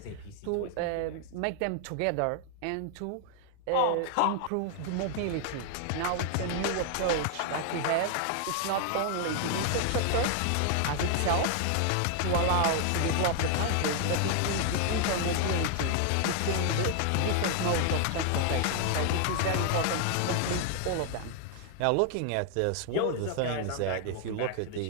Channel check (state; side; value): different; both; correlation 0.00